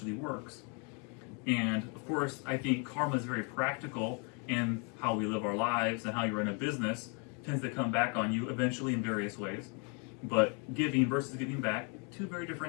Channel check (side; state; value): right; quieter; 36.2 dB